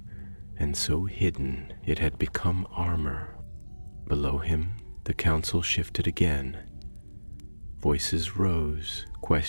and so hidden it had become armor. Below him, the council shifted again. Voices rose,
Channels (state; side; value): inverted; both; correlation -1.00